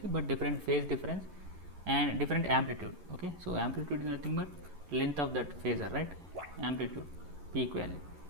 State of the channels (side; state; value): left; late; 11 ms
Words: but different phase difference and different amplitude. Okay, so amplitude is nothing but length of that phasor, right? Amplitude, peak value.